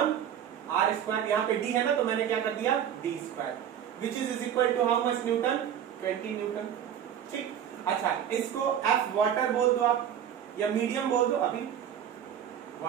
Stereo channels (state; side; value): quieter; left; 9.4 dB